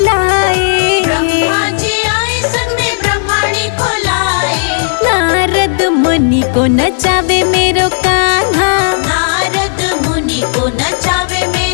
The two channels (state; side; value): silent; right; digital silence